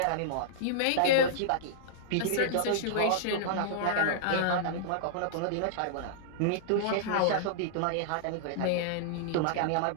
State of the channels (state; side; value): different; both; correlation -0.02